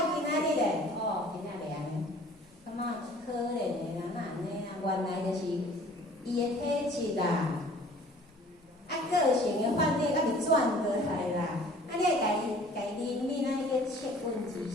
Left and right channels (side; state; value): both; normal; correlation 0.51